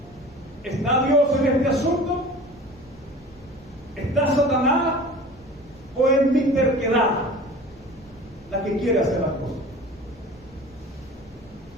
¿Está Dios en este asunto? ¿Está Satanás? ¿O es mi terquedad la que quiere hacer las cosas?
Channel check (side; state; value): both; normal; correlation 0.40